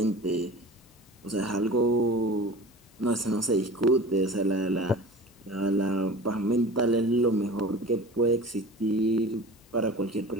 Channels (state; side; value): normal; both; correlation 0.38